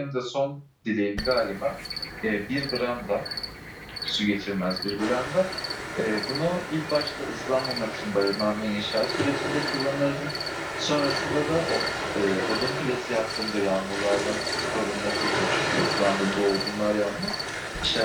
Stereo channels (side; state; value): both; identical; correlation 1.00